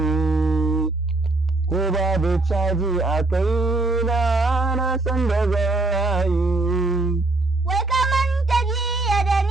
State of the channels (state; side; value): quieter; left; 3.1 dB